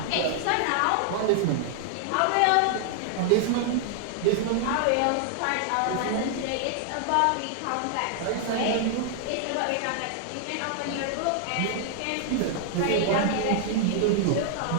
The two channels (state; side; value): different; both; correlation -0.01